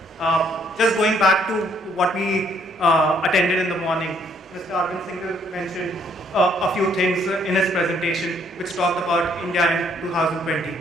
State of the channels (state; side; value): normal; both; correlation 0.67